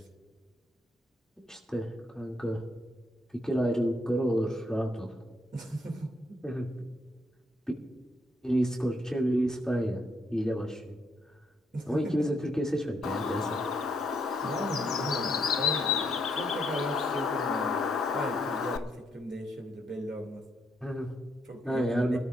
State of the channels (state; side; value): normal; both; correlation 0.75